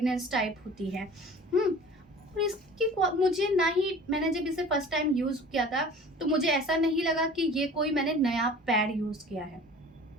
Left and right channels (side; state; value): both; normal; correlation 0.44